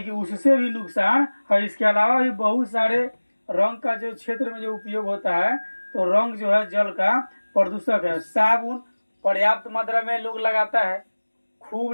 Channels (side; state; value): both; inverted; correlation -1.00